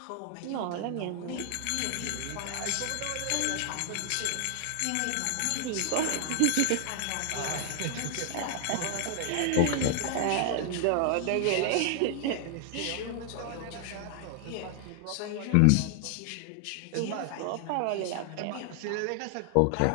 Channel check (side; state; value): both; different; correlation 0.00